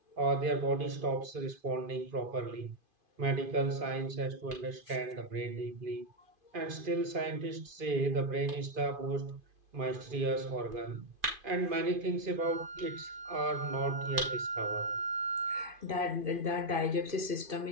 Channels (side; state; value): left; late; 2.5 ms